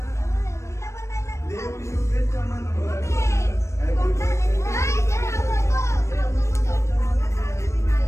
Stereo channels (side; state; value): right; late; 0.14 ms